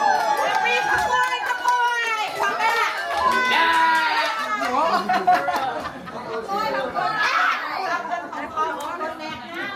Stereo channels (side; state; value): both; identical; correlation 1.00